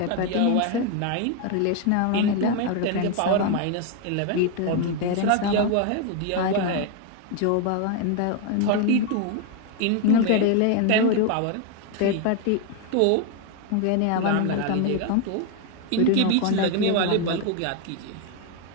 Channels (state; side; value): different; both; correlation 0.01